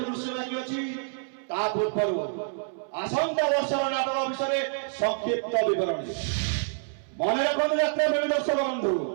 दृश्य बाकी अछि ता पूर्व आसंता वर्षर नाटक विषय संक्षिप्त विवरणी मन रखु यात्रा प्रेमी दर्शक बंधु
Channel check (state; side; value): silent; left; 60 dB below the other